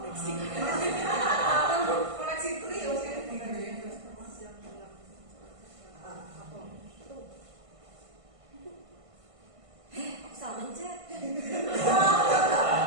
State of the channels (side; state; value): left; late; 1.5 ms